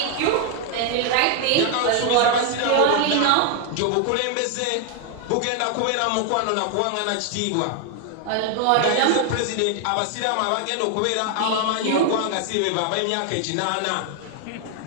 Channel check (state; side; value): different; both; correlation 0.00